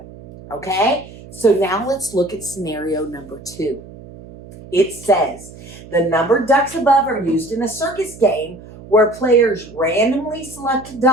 Okay? So now let's look at scenario number 2. It says, the numbered ducks above are used in a circus game where players randomly select a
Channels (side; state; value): right; noise; hum, 18 dB below the sound